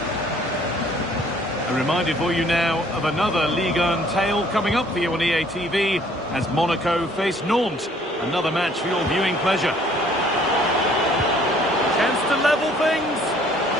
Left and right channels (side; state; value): both; normal; correlation 0.59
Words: A reminder for you now of another Ligue 1 tale coming up for you on EA TV as Monaco face Nantes. Another match for your viewing pleasure. Chance to level things.